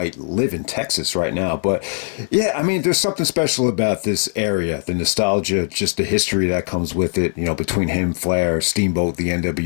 live in Texas right now. But yeah, I mean, there's something special about this area, the nostalgia, just the history that comes with it, between him, Flair, Steamboat, the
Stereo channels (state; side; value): silent; right; 57 dB below the other